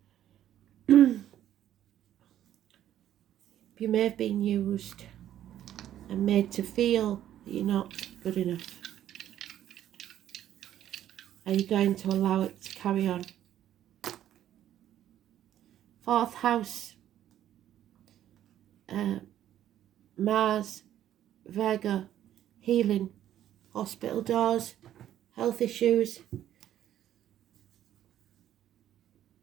You may have been used and made to feel that you're not good enough. Are you going to allow it to carry on? 4th house, Mars, Virgo, healing, hospital doors, health issues.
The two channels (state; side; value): quieter; left; 11.6 dB